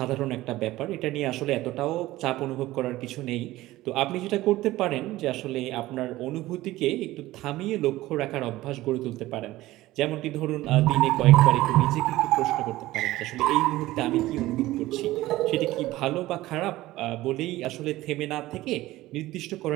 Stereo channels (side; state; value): left; quieter; 17.0 dB